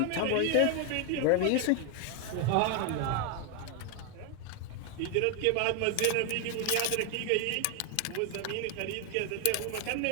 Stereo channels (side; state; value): both; different; correlation 0.01